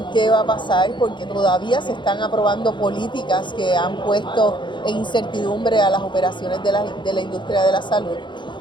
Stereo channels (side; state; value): right; late; 0.23 ms